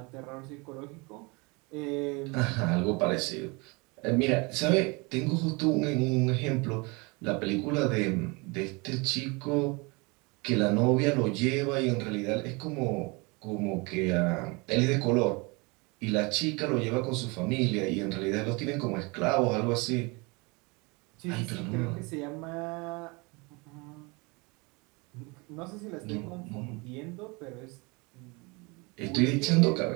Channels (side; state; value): left; quieter; 27.8 dB